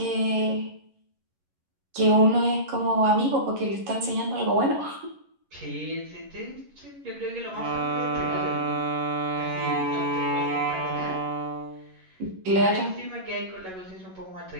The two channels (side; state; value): left; late; 11 ms